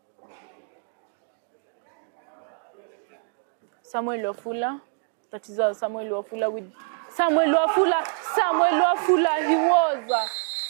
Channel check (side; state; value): left; silent; 61 dB below the other